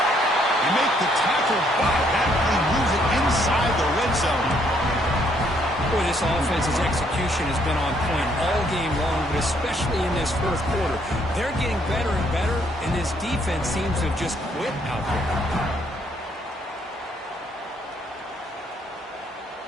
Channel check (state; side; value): normal; both; correlation 0.69